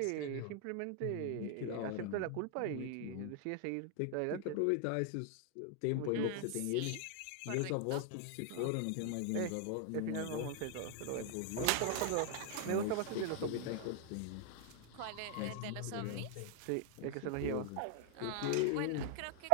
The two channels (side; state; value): both; different; correlation 0.00